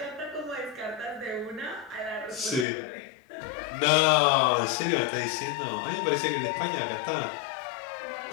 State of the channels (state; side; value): drops out; right; at 2.7 s